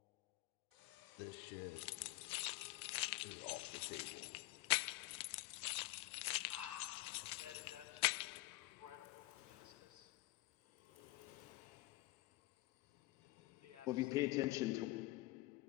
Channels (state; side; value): quieter; right; 20.1 dB